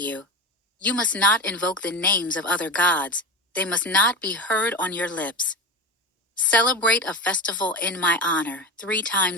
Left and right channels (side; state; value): both; normal; correlation 0.24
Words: you. You must not invoke the names of other gods. They must not be heard on your lips. Celebrate a festival in my honor 3